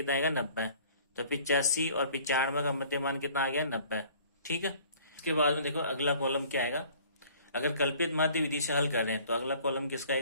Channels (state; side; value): inverted; both; correlation -0.52